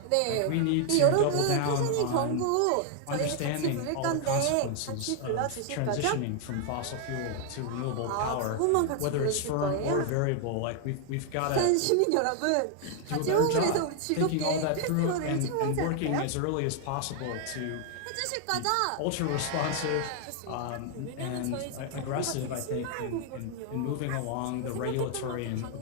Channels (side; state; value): both; different; correlation 0.00